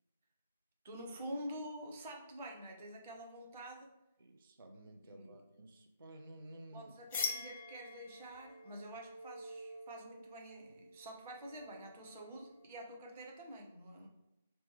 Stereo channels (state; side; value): inverted; both; correlation -0.60